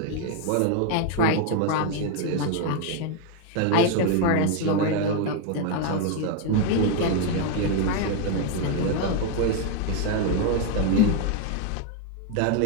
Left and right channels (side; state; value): both; different; correlation 0.01